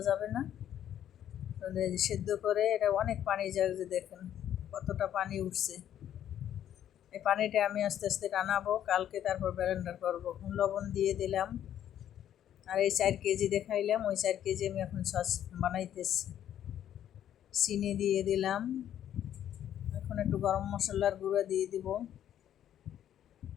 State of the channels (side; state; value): right; quieter; 10.7 dB